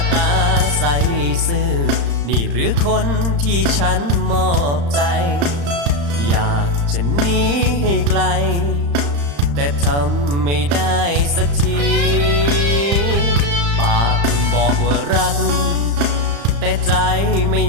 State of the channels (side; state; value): left; late; 35 ms